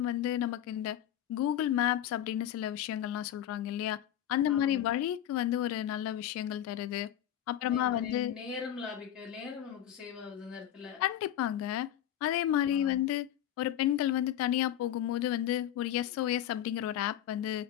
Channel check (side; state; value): right; quieter; 11.3 dB